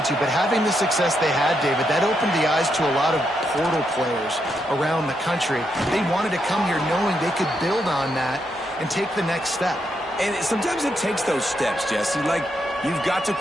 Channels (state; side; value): normal; both; correlation 0.80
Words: to, but having the success they had, David, that opened the eyes to a lot of portal players around the country. They wanted to come here knowing they could build on that and take the next step. And sometimes it takes those steps, Jesse. Like, you've got to